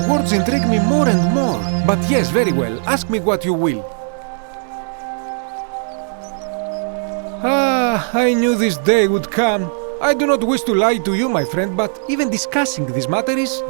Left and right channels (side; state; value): left; silent; 67 dB below the other